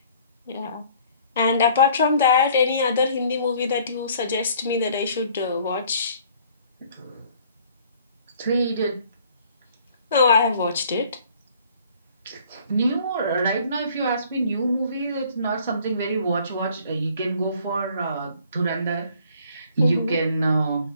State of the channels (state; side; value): inverted; both; correlation -0.57